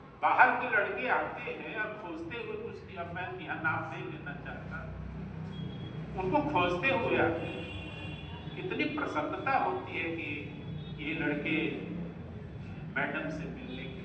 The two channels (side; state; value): both; identical; correlation 1.00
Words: बाहर के लड़के आते हैं और खोजते हुए कुछ, अब मैं यहाँ नाम नहीं लेना चाहता, उनको खोजते हुए आते हैं। कितनी प्रसन्नता होती है कि ये लड़के मैडम से मिलने के